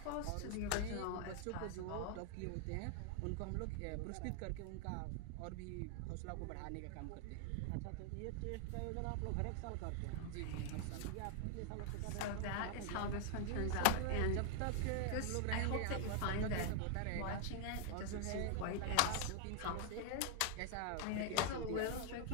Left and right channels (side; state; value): both; different; correlation 0.00